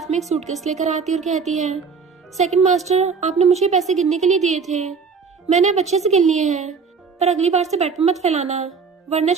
में एक सूटकेस लेकर आती और कहती है, सेकंड मास्टर आपने मुझे पैसे गिनने के लिए दिए थे, मैंने अब अच्छे से गिन लिए हैं, पर अगली बार से बेड पे मत फैलाना वरना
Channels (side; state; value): left; quieter; 5.4 dB